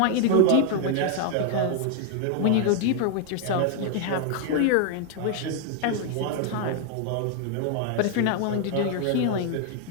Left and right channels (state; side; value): different; both; correlation 0.00